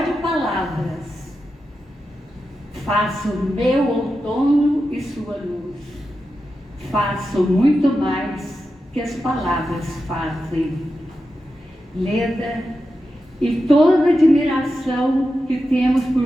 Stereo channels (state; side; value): normal; both; correlation 0.90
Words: palavras faço meu outono e sua luz. Faço muito mais que as palavras fazem. Leda, e toda a admiração que temos por